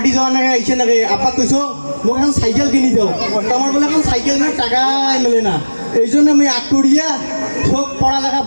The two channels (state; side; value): inverted; both; correlation -1.00